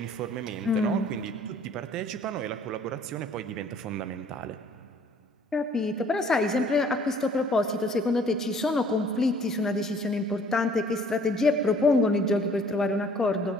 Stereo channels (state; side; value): normal; both; correlation 0.56